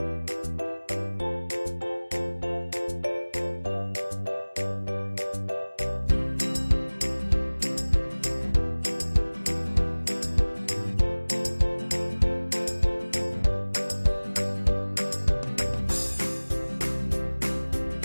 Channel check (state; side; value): inverted; both; correlation -1.00